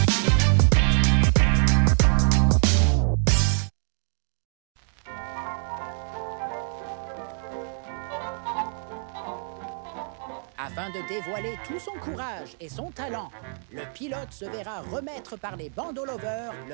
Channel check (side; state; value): left; silent; 61 dB below the other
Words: Afin de dévoiler tout son courage et son talent, le pilote se verra remettre par les bandeaux lovers